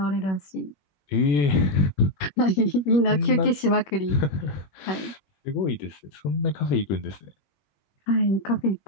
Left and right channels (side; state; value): right; late; 21 ms